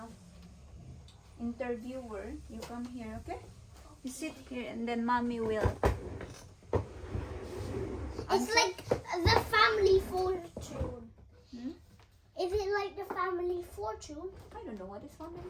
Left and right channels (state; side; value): identical; both; correlation 1.00